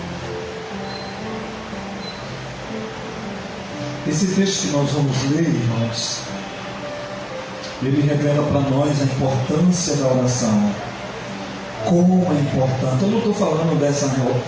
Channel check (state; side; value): identical; both; correlation 1.00